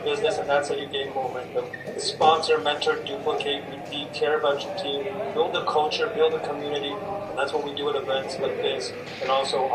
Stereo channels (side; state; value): both; identical; correlation 1.00